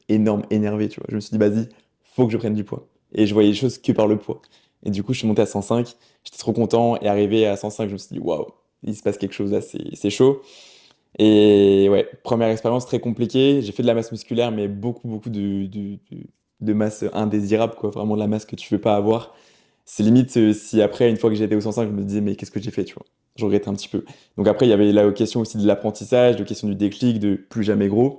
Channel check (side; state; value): both; identical; correlation 1.00